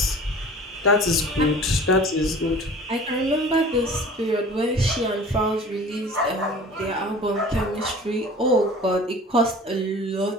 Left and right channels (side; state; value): both; normal; correlation 0.43